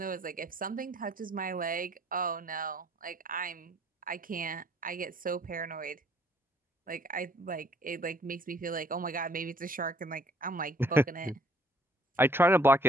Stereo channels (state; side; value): normal; both; correlation 0.61